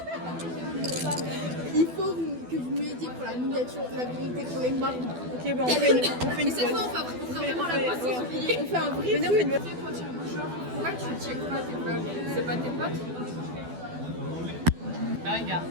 Il faut que vous m'aidiez pour la miniature, la vérité, pour les marques. Ok, bah on fait une Mais cette fois on fera vraiment la poste sans oublier. On fait un vrai truc. truc. Pourquoi tu checkes pas tes vlogs? C'est pas tes potes? Bah regarde.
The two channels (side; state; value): left; late; 12 ms